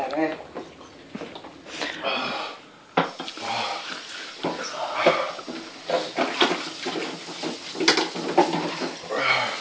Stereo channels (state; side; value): identical; both; correlation 1.00